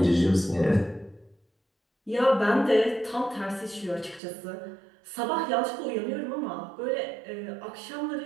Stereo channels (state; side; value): drops out; left; at 4.2 s